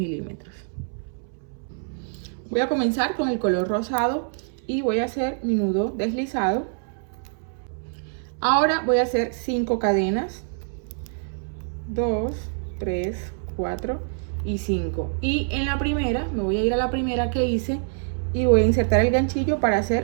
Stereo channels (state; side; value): silent; left; 62 dB below the other